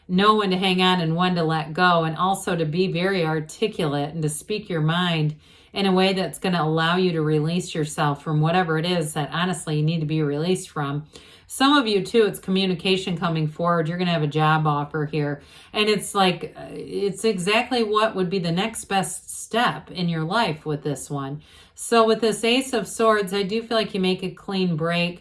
know when to hang on and when to let go, and also to be very articulate and to speak your mind in a way that's going to allow you to release yourself from whatever it is that honestly you need to be released from. Some of you too, it's communication coming forward. You're going to have a job offer here. And it's like, it's exactly what would be the next best step in your life with this one. So with this Ace of Swords, I do feel like you make a clean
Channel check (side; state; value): both; identical; correlation 1.00